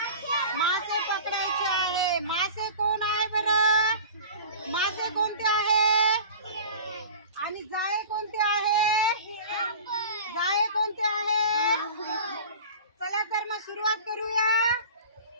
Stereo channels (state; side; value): inverted; both; correlation -0.38